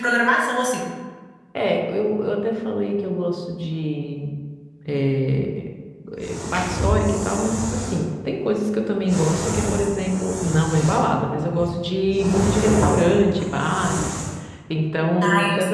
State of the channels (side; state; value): both; identical; correlation 1.00